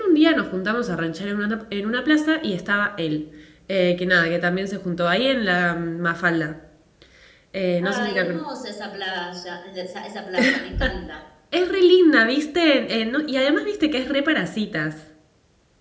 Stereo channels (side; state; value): both; identical; correlation 1.00